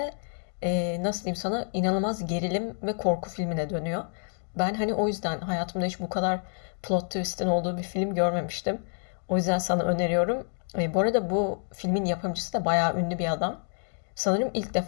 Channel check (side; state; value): right; silent; 59 dB below the other